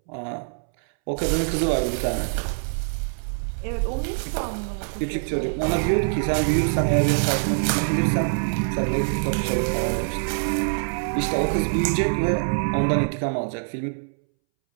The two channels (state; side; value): silent; left; 63 dB below the other